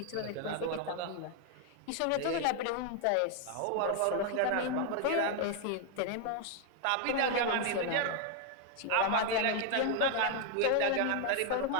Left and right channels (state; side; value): different; both; correlation 0.00